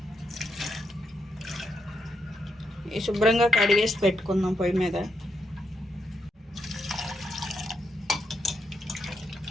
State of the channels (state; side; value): normal; both; correlation 0.81